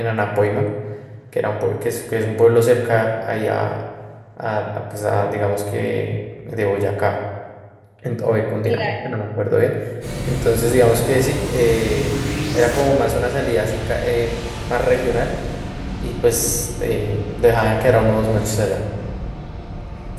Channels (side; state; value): both; identical; correlation 1.00